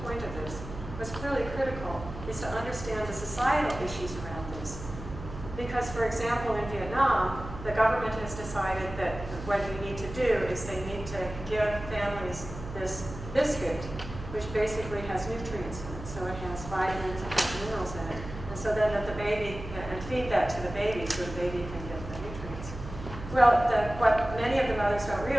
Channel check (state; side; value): noise; right; hum, 11 dB below the sound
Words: point of this, what's clearly critical is to understand the societal issues around this. Because, for example, in Vietnam, the government has decided that what you need to do is they need to give families this biscuit, which basically has nutrients in it. So it has vitamins and has minerals in it. And so then that the baby, and feed that to the baby so the baby can get the nutrients. Well, what many of the mothers don't